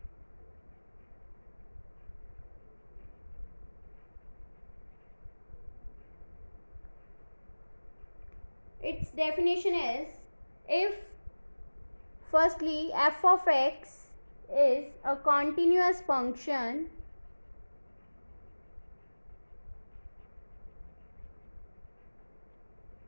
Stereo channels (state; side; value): inverted; both; correlation -1.00